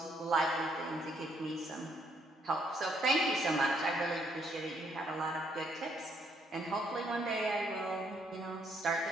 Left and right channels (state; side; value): normal; both; correlation 0.70